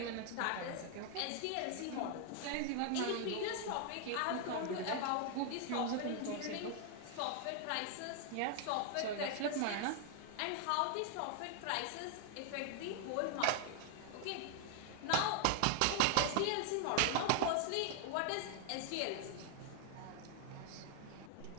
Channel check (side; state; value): both; different; correlation 0.00